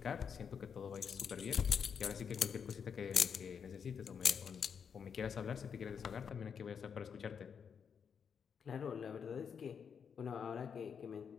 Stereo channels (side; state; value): right; quieter; 6.9 dB